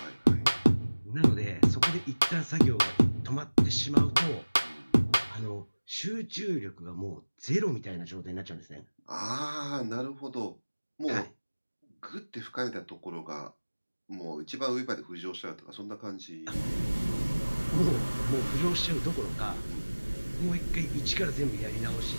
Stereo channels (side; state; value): both; inverted; correlation -1.00